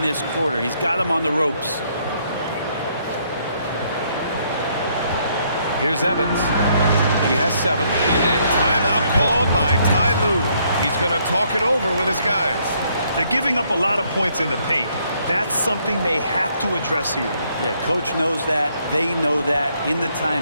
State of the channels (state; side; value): inverted; both; correlation -0.70